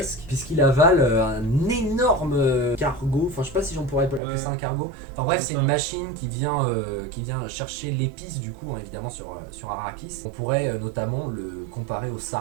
puisqu'il avale un énorme cargo, enfin je sais pas si j'en pourrais appeler ça un cargo, enfin bref c'est une machine qui vient chercher l'épice du coup, évidemment sur Arrakis. On pourrait notamment le comparer au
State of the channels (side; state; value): left; drops out; at 4.2 s